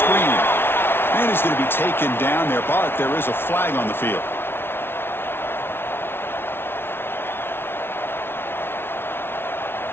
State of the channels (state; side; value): late; right; 0.11 ms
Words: Man is going to be taken down there, but there is a flag on the field.